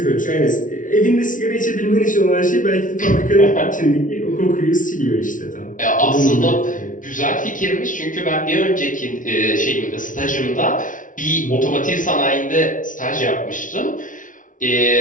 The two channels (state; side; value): late; right; 0.38 ms